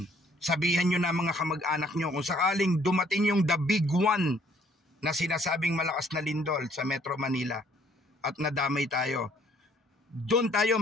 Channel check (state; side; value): normal; both; correlation 0.62